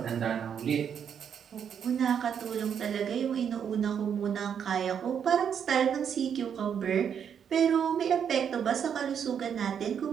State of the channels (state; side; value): quieter; left; 7.9 dB